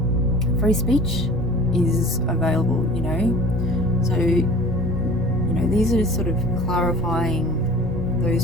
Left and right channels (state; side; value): noise; right; rumble, 8 dB below the sound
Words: free speech is available, you know. So, you know, these are sort of clarifying